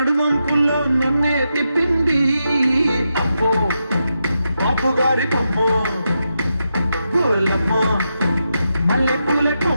నన్నే తిప్పింది. అమ్మో బాపుగారి కొమ్మ, గోలమ్మ మల్లె పూల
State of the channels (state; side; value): inverted; both; correlation -0.86